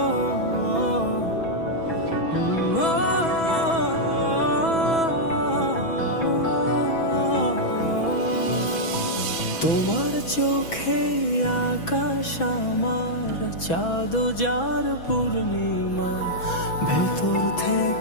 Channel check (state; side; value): late; right; 6.1 ms